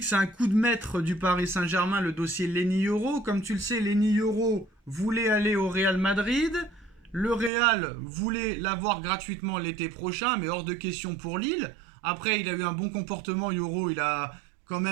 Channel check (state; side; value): drops out; left; at 7.5 s